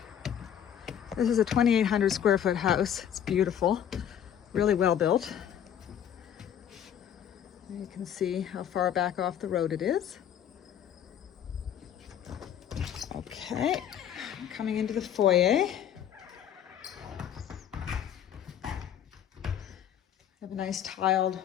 This is a 2,800 square foot house. It's beautiful, really well built. You can see how far back off the road it is. Okay, coming into the foyer. I have a nice tiled,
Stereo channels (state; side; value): quieter; right; 9.6 dB